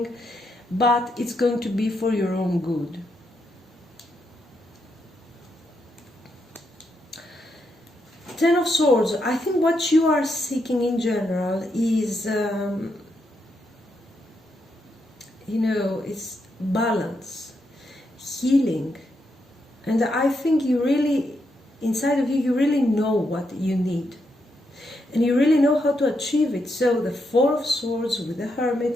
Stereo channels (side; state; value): both; normal; correlation 0.81